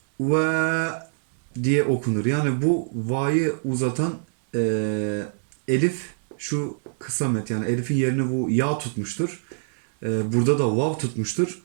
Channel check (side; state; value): left; silent; digital silence